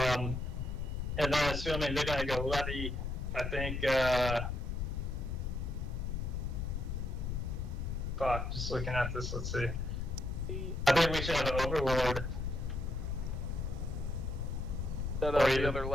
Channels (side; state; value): left; noise; rumble, 2 dB below the sound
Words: then assuming they're gonna go levy, I think fuck, just looking at this, let's see. I think we should have an overlord. Instead of the other